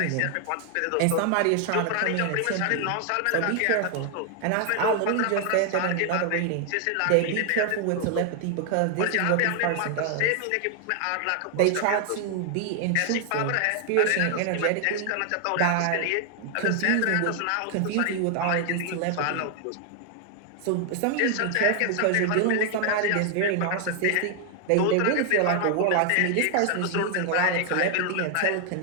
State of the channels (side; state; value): both; different; correlation 0.00